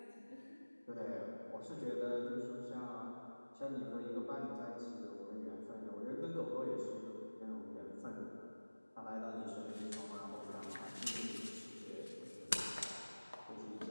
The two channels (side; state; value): both; inverted; correlation -1.00